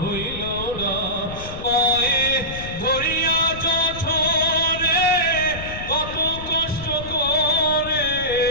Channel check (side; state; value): left; noise; rumble, 11 dB below the sound